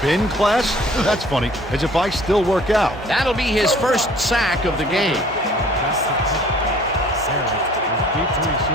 class? That's funny, as if I still work out. That'll be his first sack of the game. That's the pick. Harris is deep to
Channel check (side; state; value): both; normal; correlation 0.53